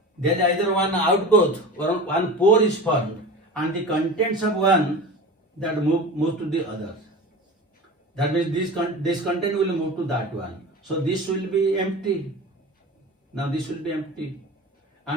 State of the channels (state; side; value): normal; both; correlation 0.33